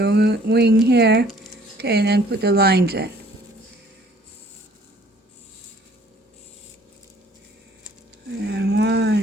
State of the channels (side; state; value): both; normal; correlation 0.57